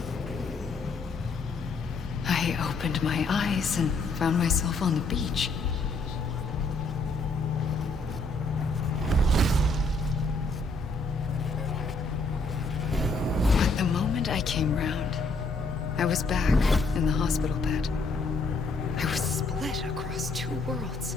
I opened my eyes and found myself on the beach. But the moment I came round, I was back in the hospital bed. I was split across two worlds.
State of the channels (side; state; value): right; quieter; 3.4 dB